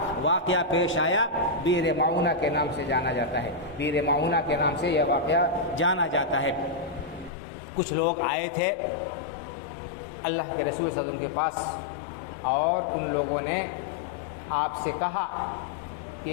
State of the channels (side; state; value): right; drops out; at 7.3 s